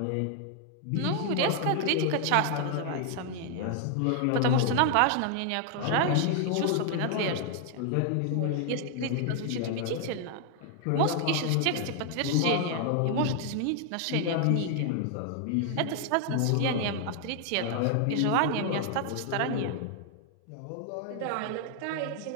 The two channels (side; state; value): both; different; correlation 0.00